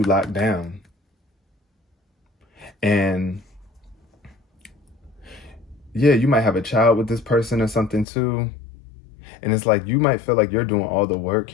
locked down. And yeah, you might have a child with this person or something too. And it's like you might feel like you're doing all the work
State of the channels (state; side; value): drops out; right; at 8.1 s